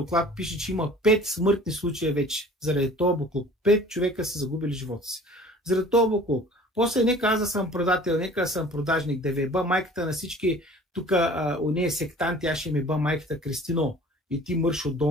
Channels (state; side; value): normal; both; correlation 0.47